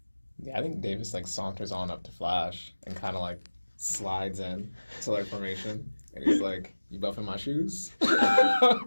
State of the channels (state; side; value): inverted; both; correlation -1.00